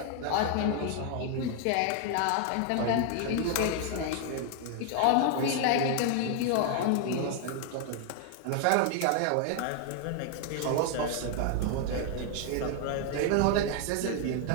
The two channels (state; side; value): different; both; correlation 0.00